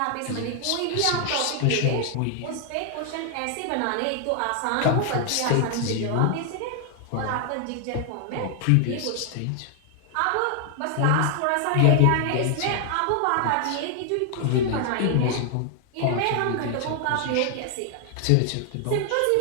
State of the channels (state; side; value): different; both; correlation 0.00